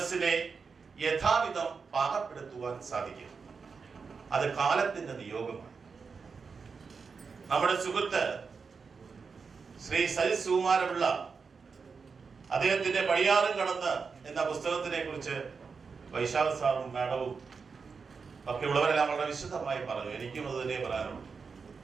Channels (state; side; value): quieter; left; 5.2 dB